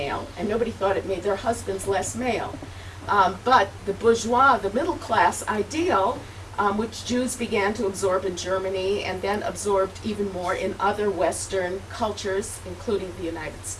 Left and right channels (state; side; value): identical; both; correlation 1.00